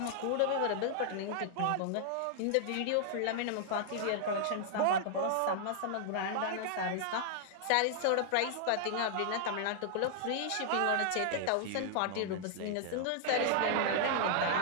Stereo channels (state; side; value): different; both; correlation -0.01